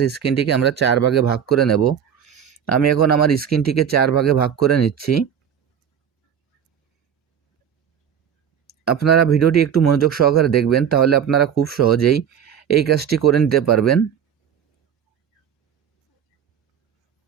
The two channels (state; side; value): quieter; left; 8.3 dB